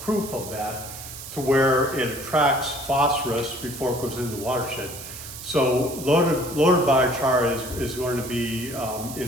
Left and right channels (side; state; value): right; noise; hiss, 12 dB below the sound